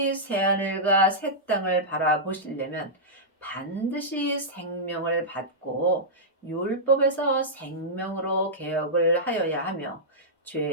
새하늘과 새 땅을 바라보시려면 반드시 생명을 받고 율법에서 생명으로 개혁을 하여야 하며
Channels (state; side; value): normal; both; correlation -0.12